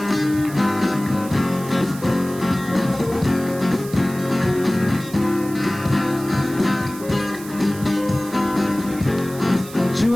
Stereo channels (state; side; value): noise; right; hiss, 16 dB below the sound